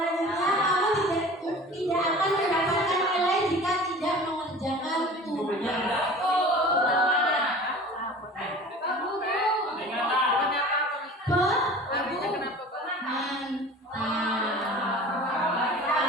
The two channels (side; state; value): both; normal; correlation 0.41